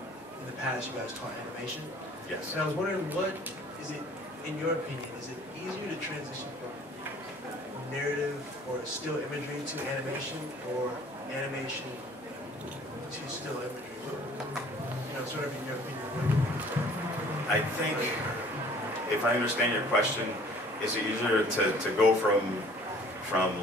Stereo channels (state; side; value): normal; both; correlation 0.52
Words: in the past you guys taught animation. Yes. And I was wondering, what is it, in your opinion, is it easier to transition from narrative or still imagery to animation, or animation to still imagery? You know, sort of in your opinion. I think, if I understand your question, is it easier to go from